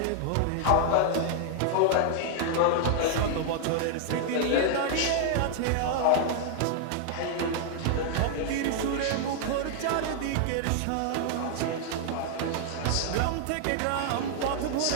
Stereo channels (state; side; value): different; both; correlation 0.00